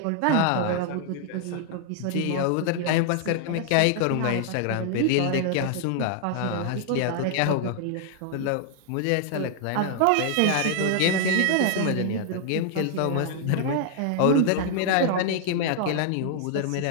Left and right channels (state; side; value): different; both; correlation 0.00